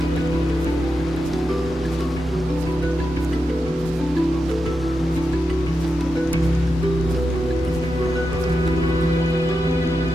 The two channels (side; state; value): both; normal; correlation 0.88